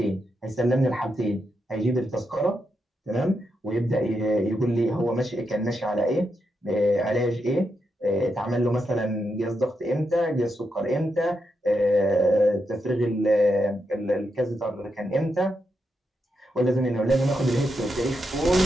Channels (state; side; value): normal; both; correlation 0.84